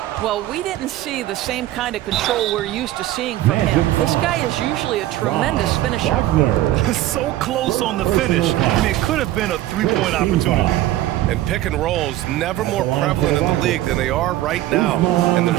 Well, we didn't see the same kind of control we're used to seeing from him. This guy is usually a tremendous finisher. So close on the finish. I mean, it could have been a three-point opportunity. And pick and rolls never more prevalent in the league than they are right now. And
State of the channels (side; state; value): left; quieter; 14.7 dB